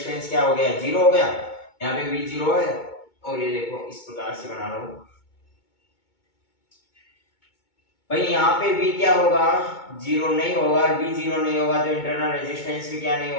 क्या हो गया, 0 हो गया, यहाँ पे भी 0 है, और ये देखो इस प्रकार से बना लो भाई। यहाँ पे भी क्या होगा, 0 नहीं होगा, और भी 0 नहीं होगा, तो इंटरनल रेजिस्टेंस भी क्या नहीं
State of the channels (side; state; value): right; late; 2.2 ms